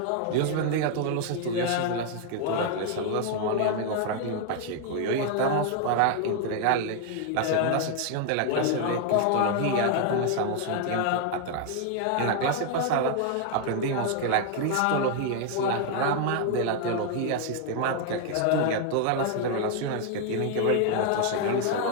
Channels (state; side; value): different; both; correlation 0.00